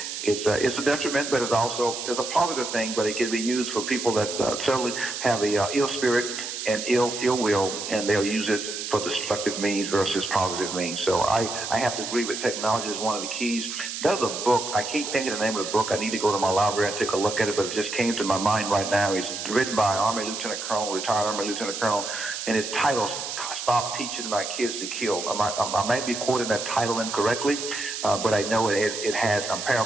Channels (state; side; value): noise; right; hiss, 6 dB below the sound